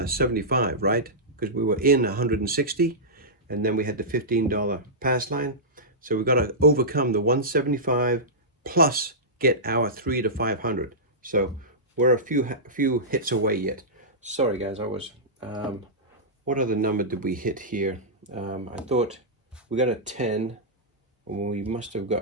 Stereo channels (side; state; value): both; normal; correlation -0.15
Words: right? Because we were in 160, and then we had the $15 pass line. So we've got to overcome the 175 plus get our 300 to 500. So we're a few hits away yet. Sorry guys, I was what other number did we hit here? I thought we got a 10, and we must have